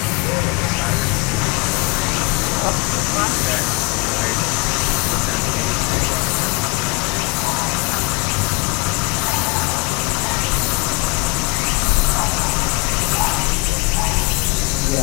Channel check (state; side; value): quieter; right; 26.1 dB